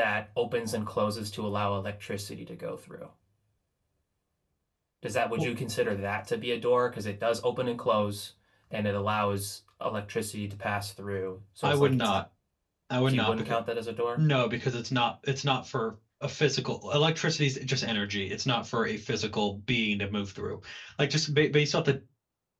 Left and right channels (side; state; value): both; identical; correlation 1.00